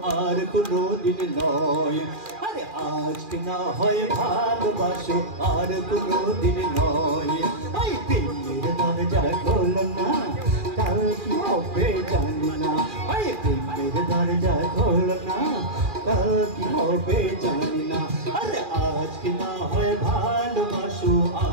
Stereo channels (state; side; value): late; left; 2.4 ms